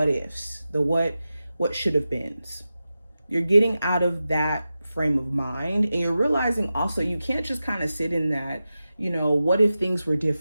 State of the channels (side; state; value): both; inverted; correlation -0.93